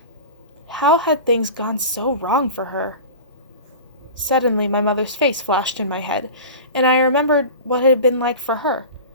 How had things gone so wrong for her? Suddenly, my mother's face flashed in my head, and I remembered what it had been like for her.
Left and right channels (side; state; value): both; inverted; correlation -0.34